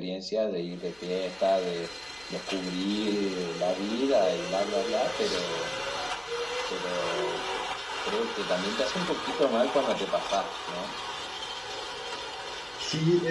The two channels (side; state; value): left; noise; hum, 30 dB below the sound